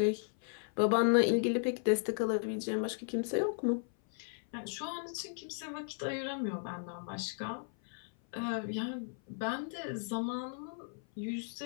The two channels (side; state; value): right; silent; 54 dB below the other